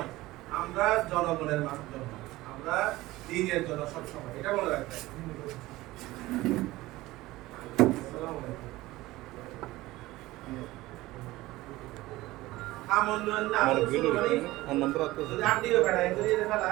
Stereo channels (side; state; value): left; quieter; 18.4 dB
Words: আমরা জনগণের জন্য, আমরা দিনের জন্য সবসময়, এটা মনে রাখবেন।